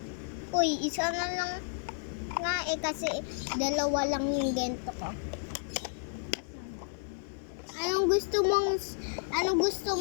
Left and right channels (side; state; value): right; silent; digital silence